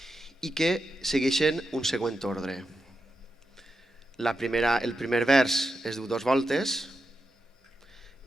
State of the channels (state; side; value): normal; both; correlation 0.88